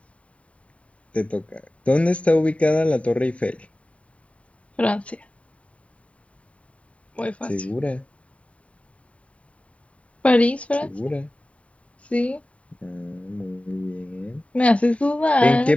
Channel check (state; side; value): late; right; 0.065 ms